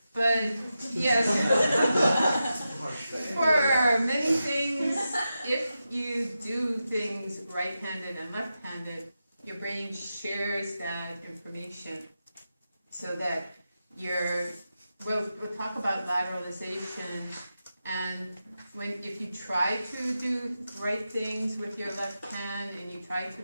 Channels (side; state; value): both; inverted; correlation -0.90